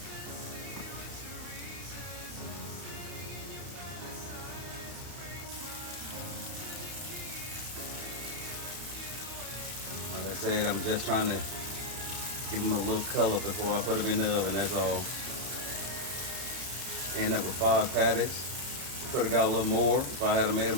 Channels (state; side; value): late; left; 31 ms